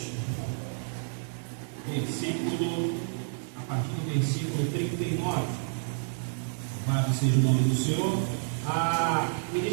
a partir do versículo 39. Louvado seja o nome do Senhor. A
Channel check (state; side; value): silent; left; digital silence